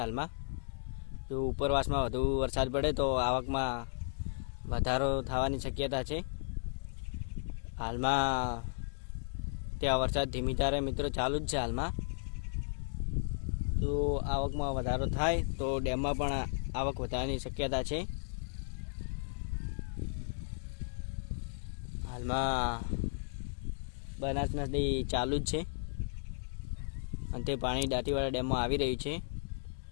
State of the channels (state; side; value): silent; right; digital silence